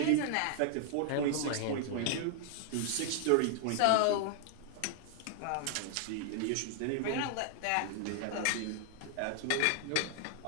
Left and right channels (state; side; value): different; both; correlation 0.00